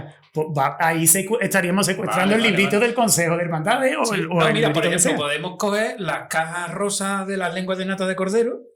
ahí estaríamos secuestrando el librito del Consejo de Hermandades o el mira, librito por que ejemplo, sea. podemos coger las cajas rosas de las lenguas de nata de cordero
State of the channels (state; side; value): identical; both; correlation 1.00